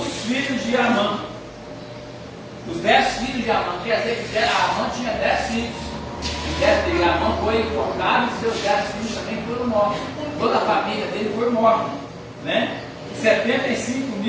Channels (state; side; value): identical; both; correlation 1.00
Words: filhos de Amã. Os 10 filhos de Amã, quer dizer que Amã tinha 10 filhos. E Amã foi enforcado e seus 10 filhos também foram mortos. Toda a família dele foi morta, né? 75